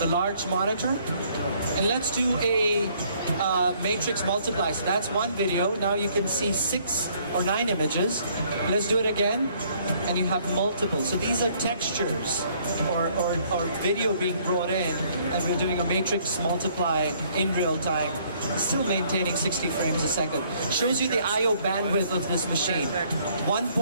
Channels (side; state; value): both; inverted; correlation -0.63